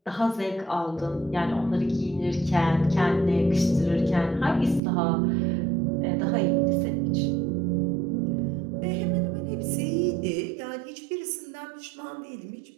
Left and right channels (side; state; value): left; drops out; at 4.8 s